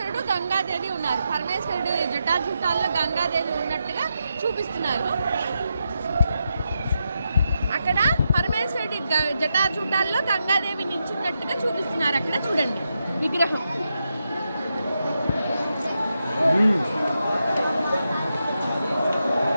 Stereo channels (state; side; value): inverted; both; correlation -0.86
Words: గంగాదేవి ఉన్నారు. పరమేశ్వరుడు జటాజుటాల్లో గంగాదేవి ఉన్నట్టుగా చూపిస్తున్నారు. అక్కడ పరమేశ్వరుడి జటాజూటాల్లో గంగాదేవి నిల్చున్నట్టుగా చూపిస్తున్నారు. అక్కడ చూడండి విగ్రహం.